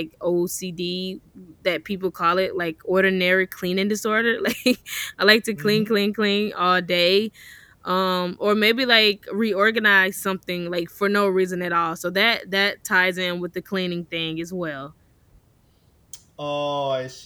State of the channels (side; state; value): both; identical; correlation 1.00